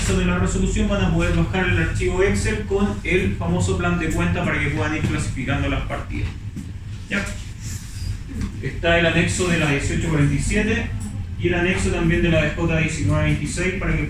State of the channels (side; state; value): both; identical; correlation 1.00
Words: de la resolución van a poder bajar el archivo Excel con el famoso plan de cuenta para que puedan ir clasificando las partidas. ¿Ya? Está el anexo de la 1847 y el anexo también de la DJ 1926 para que